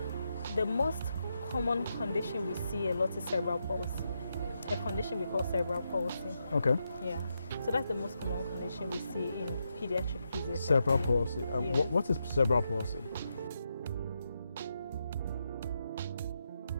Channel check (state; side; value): inverted; both; correlation -0.84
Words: the most common condition we see a lot is cerebral palsy, a condition we call cerebral palsy. Okay. Yeah. So that's the most common condition we see in pediatric physiotherapy. Cerebral palsy. Yes. What is cerebral palsy?